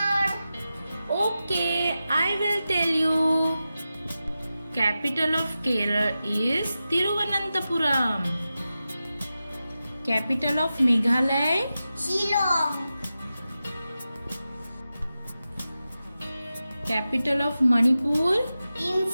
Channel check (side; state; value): both; inverted; correlation -0.92